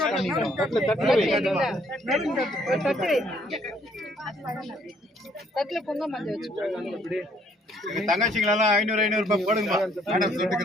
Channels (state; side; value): normal; both; correlation 0.65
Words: தட்டுல பொங்க மஞ்சள் வச்சு தங்கச்சிங்களெல்லாம் 500 ரூபாய் போடுங்க மேடம்